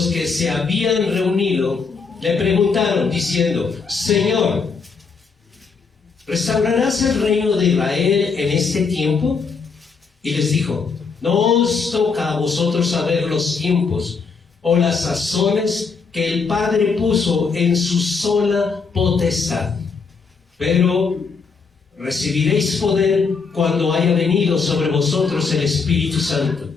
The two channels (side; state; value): right; quieter; 5.1 dB